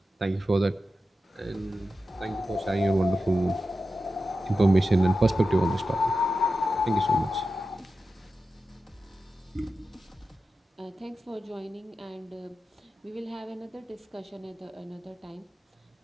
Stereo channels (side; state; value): both; normal; correlation 0.91